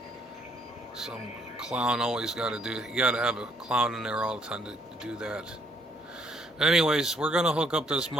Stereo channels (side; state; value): both; normal; correlation 0.68